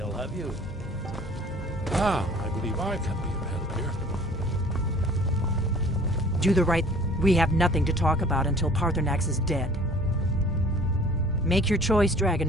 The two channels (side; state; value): both; normal; correlation 0.50